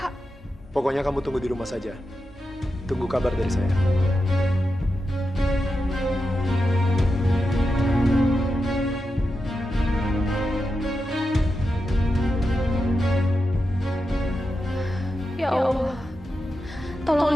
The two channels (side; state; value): both; normal; correlation 0.89